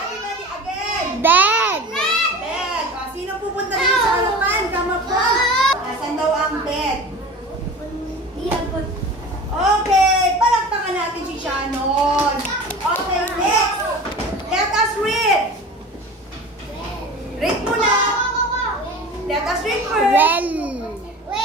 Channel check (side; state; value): both; normal; correlation 0.36